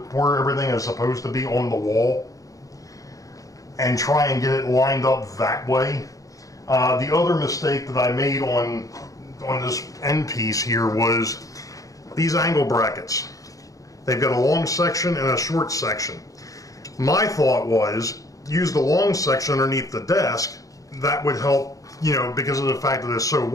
everything is supposed to be on the wall and try and get it lined up that way. The other mistake that I made on this end piece here was these angle brackets. They've got a long section and a short section. My thought was use the long section underneath the desk. That would help, because of the fact that it's so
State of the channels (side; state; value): right; late; 0.17 ms